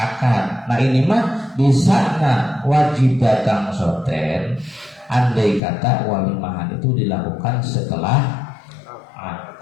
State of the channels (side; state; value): right; drops out; at 5.6 s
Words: Nah, ini mah bisa wajib datang soten. Andai kata walimahan itu dilakukan setelah